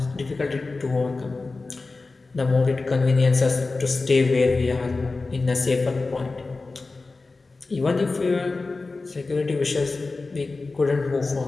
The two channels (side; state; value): right; quieter; 3.7 dB